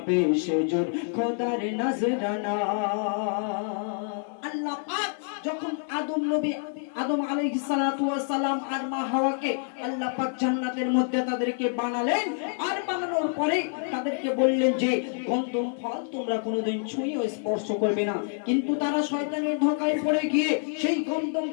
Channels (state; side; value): silent; right; 60 dB below the other